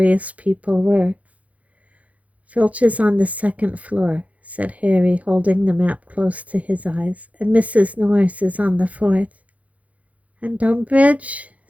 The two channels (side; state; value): left; late; 0.068 ms